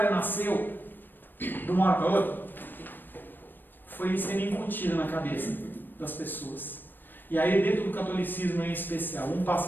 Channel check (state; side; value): late; right; 0.093 ms